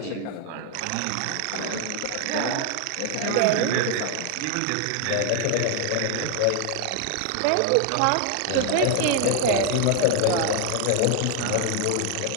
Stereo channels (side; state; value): both; different; correlation 0.00